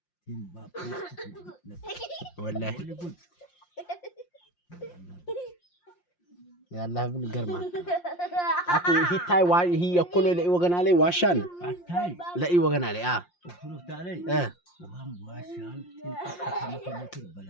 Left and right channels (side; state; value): right; late; 5.7 ms